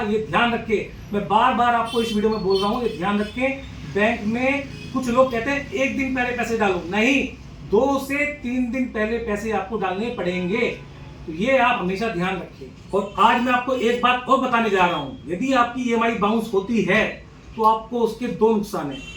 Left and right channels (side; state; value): both; identical; correlation 1.00